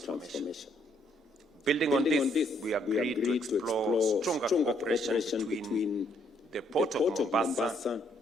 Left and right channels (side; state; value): both; normal; correlation 0.70